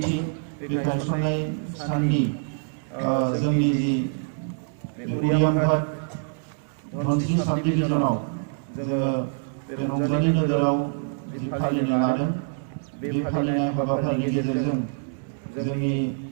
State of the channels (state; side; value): silent; left; digital silence